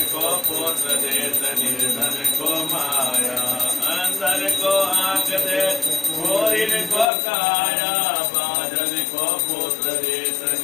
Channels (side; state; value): right; drops out; at 7.1 s